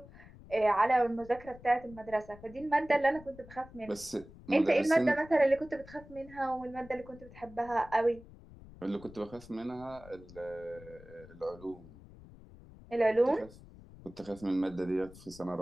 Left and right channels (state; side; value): noise; left; rumble, 20 dB below the sound